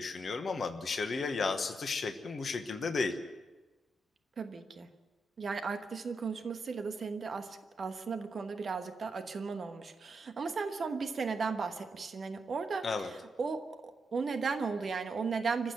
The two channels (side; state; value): both; normal; correlation 0.83